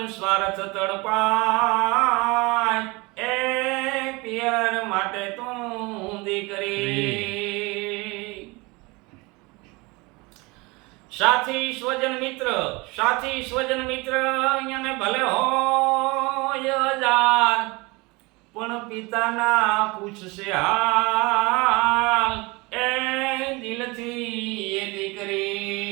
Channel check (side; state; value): left; quieter; 25.0 dB